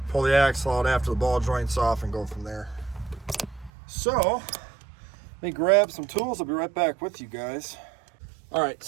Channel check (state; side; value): drops out; left; at 3.7 s